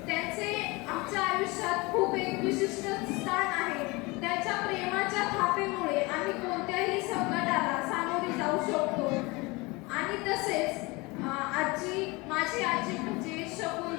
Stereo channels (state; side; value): quieter; right; 24.7 dB